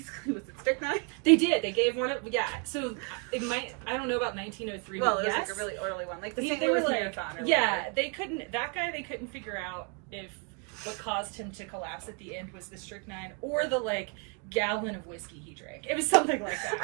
Was it strychnine? They did. They gave one of, so it might, I don't know about 1903, well, but it was yes. like a really early one, like the St. They were Louis like, marathon or yeah, whatever. They couldn't figure out if what caused him to collapse at the end was the strychnine or the, like, gallon of whiskey he drank. It was something like that.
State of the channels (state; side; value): quieter; left; 34.5 dB